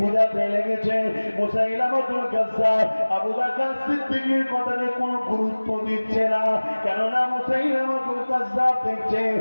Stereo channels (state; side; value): inverted; both; correlation -1.00